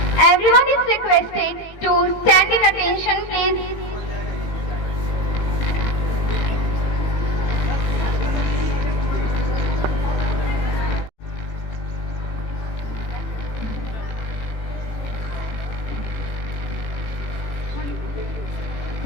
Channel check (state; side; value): late; right; 18 ms